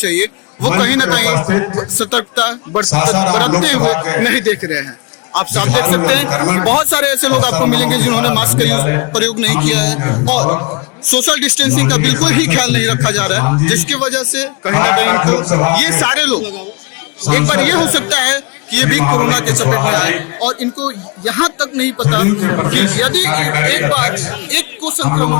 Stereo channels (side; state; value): right; quieter; 29.5 dB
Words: वो कहीं ना कहीं सतर्कता बरतते हुए नहीं देख रहे हैं। आप साफ देख सकते हैं कि बहुत सारे ऐसे लोग आपको मिलेंगे जिन्होंने मास्क का प्रयोग नहीं किया है और सोशल डिस्टेंसिंग का बिल्कुल ही ख्याल नहीं रखा जा रहा है, जिसकी वजह से कहीं ना कहीं तो ये सारे लोग एक बार ये हो सकता है कि ये भी कोरोना के चपेट में आए और इनको यहाँ तक नहीं पता कि यदि एक बार एक को संक्रमण